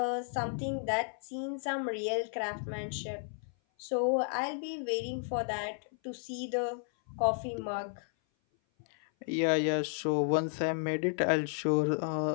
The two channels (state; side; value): silent; right; 56 dB below the other